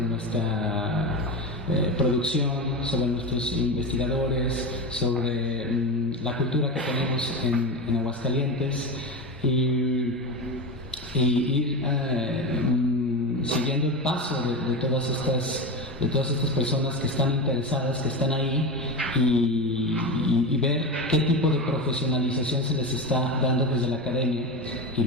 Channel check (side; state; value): both; normal; correlation 0.20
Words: producción, sobre nuestros investigadores, sobre la cultura que tenemos en Aguascalientes y ir siguiendo el paso de todas estas personas que están interesadas, que están ahí y ver qué tipo de profesionalización se les está dando desde la academia y